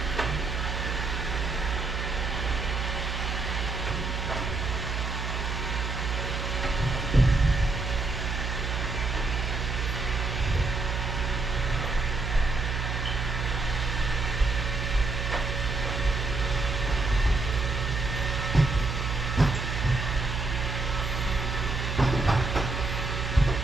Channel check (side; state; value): right; noise; hum, 2 dB below the sound